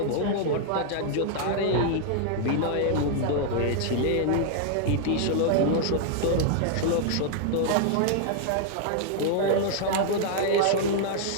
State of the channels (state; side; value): different; both; correlation 0.00